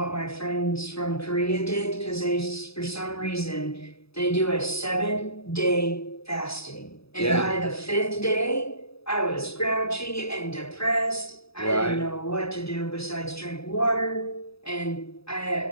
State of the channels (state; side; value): late; right; 0.77 ms